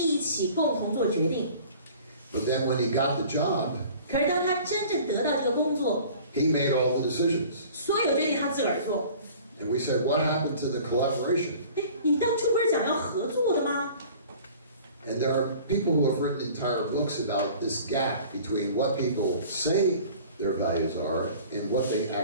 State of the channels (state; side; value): inverted; both; correlation -0.46